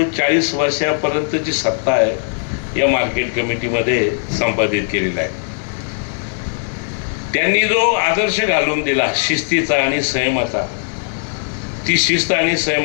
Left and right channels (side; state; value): right; silent; digital silence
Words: 40 वर्षापर्यंतची सत्ता आहे या मार्केट कमिटीमध्ये संपादित केलेला आहे. त्यांनी जो आदर्श घालून दिला शिस्तीचा आणि संयमाचा, ती शिस्त आणि